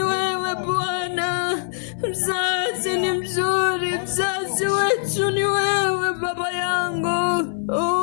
wewe Bwana. Mzazi ni mzuri, mzazi wetu ni wewe Baba yangu.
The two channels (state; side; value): silent; right; 57 dB below the other